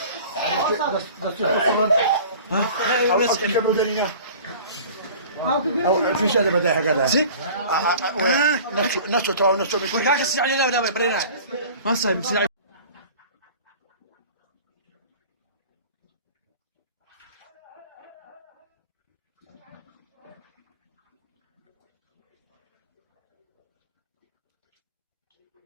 في شيء بدايه هكذا زين نفسه تو نفسه ما صايب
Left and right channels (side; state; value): both; inverted; correlation -0.42